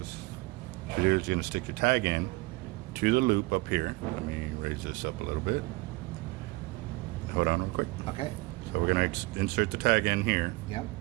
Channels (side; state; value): left; quieter; 23.1 dB